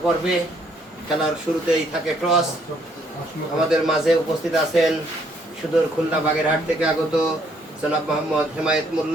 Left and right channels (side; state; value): both; normal; correlation 0.68